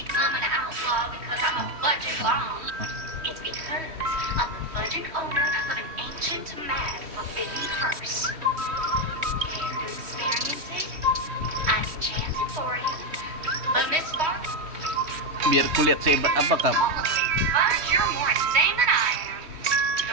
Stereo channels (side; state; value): left; late; 3.1 ms